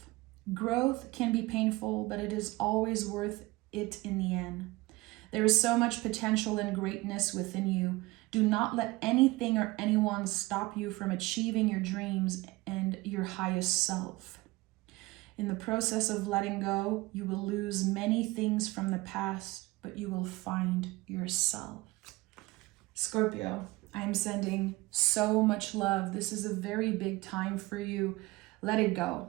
Growth can be painful, but it is always worth it in the end. There is so much potential and greatness within you. Do not let anything or anyone stop you from achieving your dreams and your highest self. In the process of letting go, you will lose many things from the past, but you will find yourself. Scorpio, I'm sending so much love. This is a very big time for you. Let it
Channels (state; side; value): quieter; left; 21.2 dB